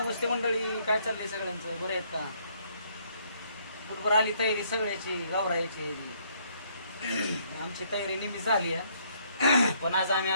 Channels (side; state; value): both; inverted; correlation -0.67